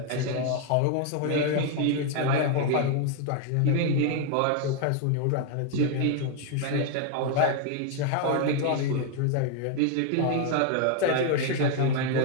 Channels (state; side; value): different; both; correlation 0.00